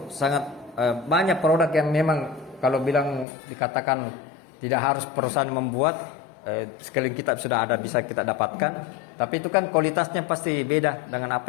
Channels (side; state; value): right; drops out; at 3.2 s